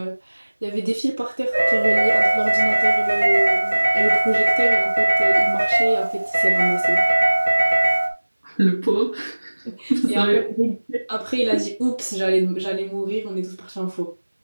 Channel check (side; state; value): both; inverted; correlation -1.00